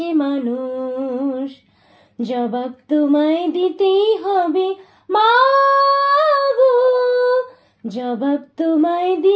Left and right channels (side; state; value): both; identical; correlation 1.00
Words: মানুষ? জবাব তোমায় দিতেই হবে মা গো, জবাব তোমায়